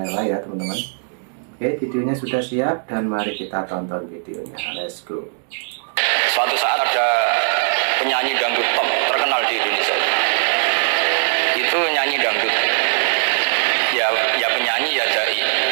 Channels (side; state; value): left; silent; digital silence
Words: ya teman-teman. Oke, videonya sudah siap dan mari kita tonton videonya. Let's go. Suatu saat ada penyanyi dangdut top terkenal di Indonesia. Itu nyanyi dangdut. Ya penyanyi ya dai.